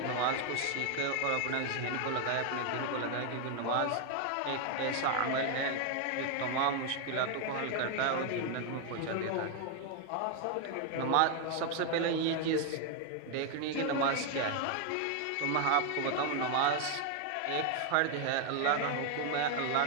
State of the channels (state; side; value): different; both; correlation 0.01